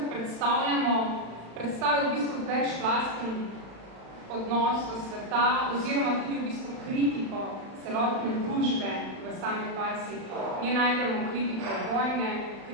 predstavljamo, predstavil v bistvu večplasten odnos do sveta oziroma tudi v bistvu kritiko celotne družbe v sami farsi. Nje najdemo kritiko vojne,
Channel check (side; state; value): left; late; 36 ms